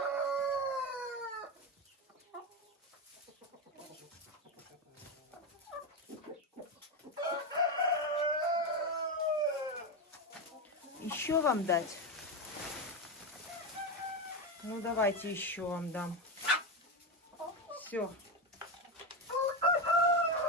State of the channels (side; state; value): both; normal; correlation 0.13